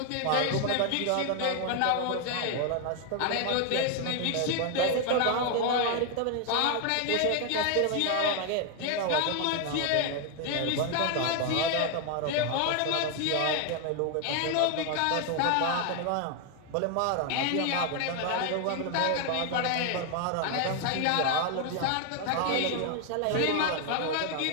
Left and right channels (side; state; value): both; different; correlation 0.01